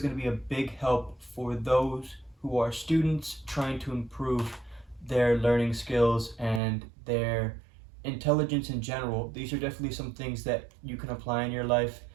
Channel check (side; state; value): left; drops out; at 6.6 s